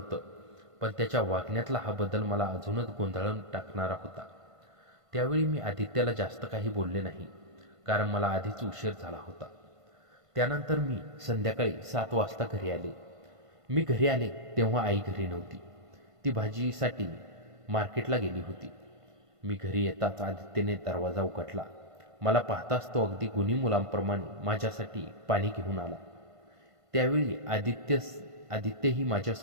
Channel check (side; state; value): left; late; 1.5 ms